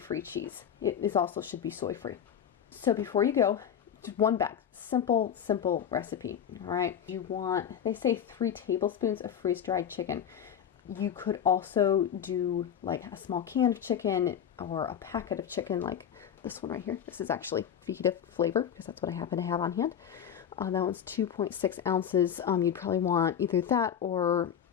cheese. It is also should be soy-free. So before you go, just one bag. Simple recipe. All right. You want, they say 3 tablespoons of freeze-dried chicken. You could also do like a small can of chicken or a packet of chicken like this one right here. This is actually fajita flavor because that's what I happen to have on hand. That one's 2.6 ounces. You'd probably want either that or,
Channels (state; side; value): quieter; right; 8.8 dB